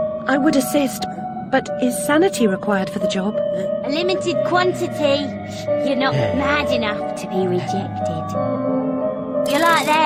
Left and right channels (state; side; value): identical; both; correlation 1.00